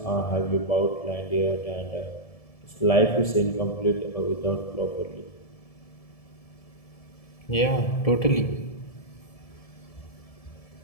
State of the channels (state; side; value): late; right; 1.7 ms